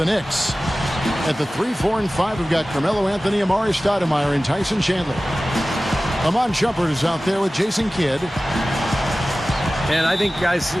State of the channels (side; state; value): both; normal; correlation 0.96